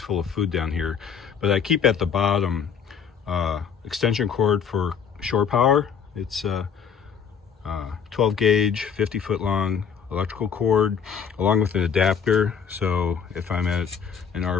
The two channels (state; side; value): quieter; right; 7.1 dB